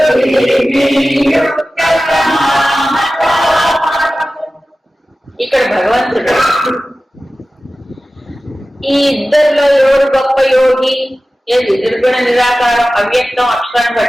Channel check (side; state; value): both; normal; correlation 0.95